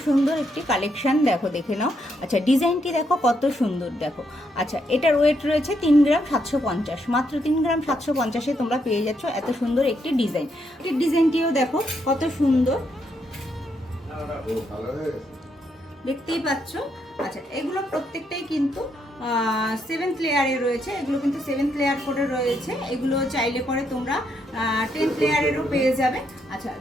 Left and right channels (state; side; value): normal; both; correlation 0.77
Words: সুন্দর একটি কালেকশন, দেখো দেখে নাও। আচ্ছা, ডিজাইনটি দেখো কত সুন্দর, দেখো। আচ্ছা, এটার ওয়েট রয়েছে 3 গ্রাম 750। মাত্র 3 গ্রাম 750-এ তোমরা পেয়ে যাচ্ছ এত সুন্দর একটি ডিজাইন। এই ডিজাইনটিও দেখো কত সুন্দর, দেখতেই পাচ্ছ। আচ্ছা, এগুলো প্রত্যেকটাই কিন্তু 7th লেয়ারে রয়েছে। এগুলো কিন্তু 7th লেয়ার করে রয়েছে। এগুলো চাইলে পরে তোমরা 10th লেয়ারেরও পেয়ে যাবে। আচ্ছা,